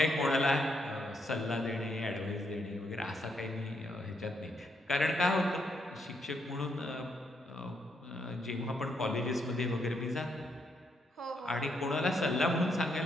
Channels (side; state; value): both; normal; correlation 0.77